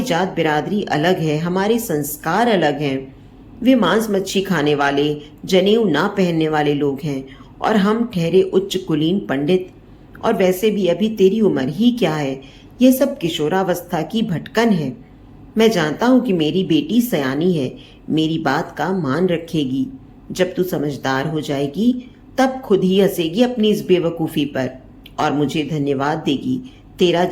जात बिरादरी अलग है, हमारे संस्कार अलग हैं। वे मांस मच्छी खाने वाले, जनेऊ ना पहनने वाले लोग हैं और हम ठहरे उच्च कुलीन पंडित। और वैसे भी अभी तेरी उम्र ही क्या है? यह सब किशोरावस्था की भटकन है। मैं जानता हूं कि मेरी बेटी सयानी है, मेरी बात का मान रखेगी। जब तू समझदार हो जाएगी तब खुद ही हंसेगी अपनी इस बेवकूफ़ी पर और मुझे धन्यवाद देगी तेरा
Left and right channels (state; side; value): identical; both; correlation 1.00